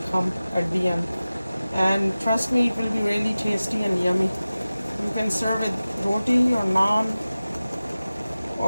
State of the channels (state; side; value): inverted; both; correlation -0.96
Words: come at the end. And trust me, it will be really tasty and yummy. You can serve it roti or naan,